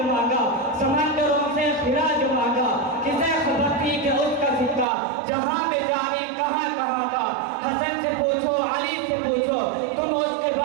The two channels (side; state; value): left; drops out; at 4.9 s